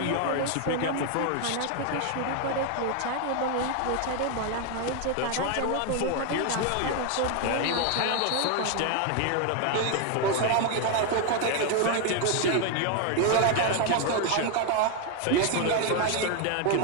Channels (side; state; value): both; different; correlation 0.01